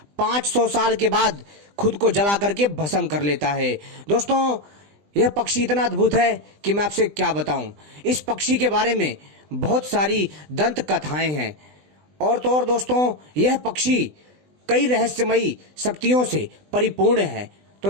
500 साल के बाद खुद को जला करके भस्म कर लेता है। दोस्तों, यह पक्षी इतना अद्भुत है कि मैं आपसे क्या बताऊं। इस पक्षी के बारे में बहुत सारी दंत कथाएं हैं। और तो और दोस्तों, यह पक्षी कई रहस्यमयी शक्तियों से परिपूर्ण है। तो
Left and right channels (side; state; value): left; late; 20 ms